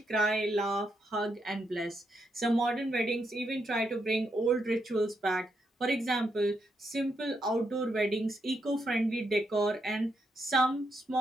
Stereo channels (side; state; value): both; normal; correlation 0.80